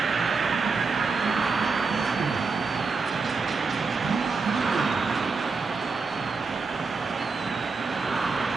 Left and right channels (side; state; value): left; quieter; 4.5 dB